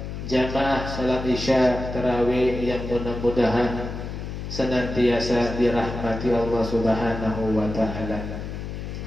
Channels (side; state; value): left; noise; hum, 7 dB below the sound